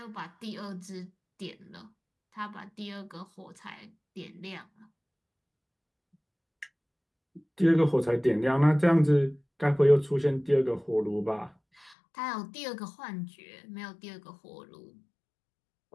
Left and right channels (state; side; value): drops out; right; at 12.0 s